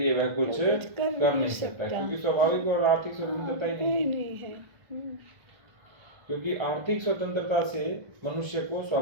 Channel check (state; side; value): late; left; 1.5 ms